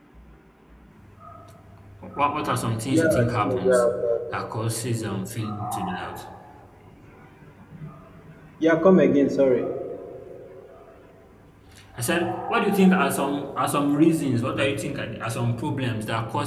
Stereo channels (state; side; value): identical; both; correlation 1.00